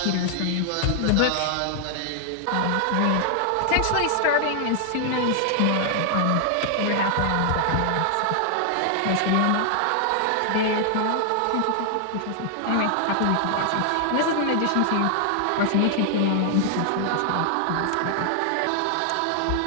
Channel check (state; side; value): different; both; correlation 0.00